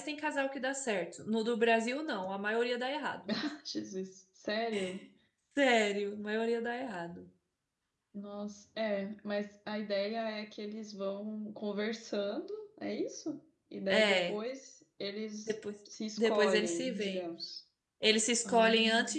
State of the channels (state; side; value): identical; both; correlation 1.00